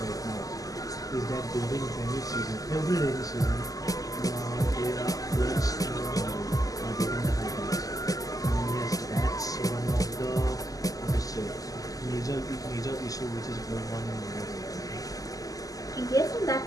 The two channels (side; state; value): right; late; 0.17 ms